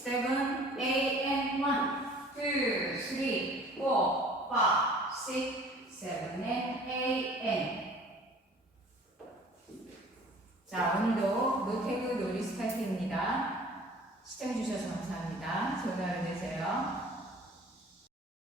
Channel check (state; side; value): normal; both; correlation 0.48